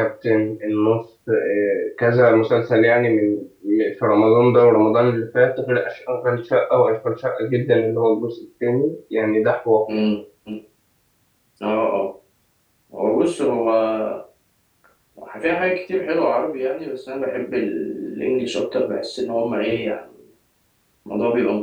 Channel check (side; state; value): both; identical; correlation 1.00